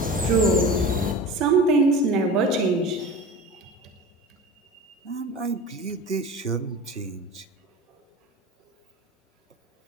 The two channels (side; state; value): both; normal; correlation 0.34